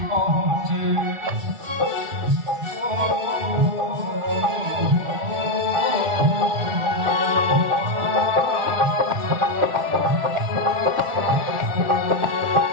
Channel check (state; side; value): late; left; 1.4 ms